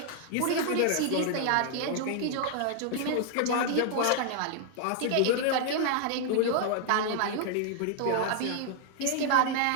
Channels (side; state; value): both; different; correlation 0.00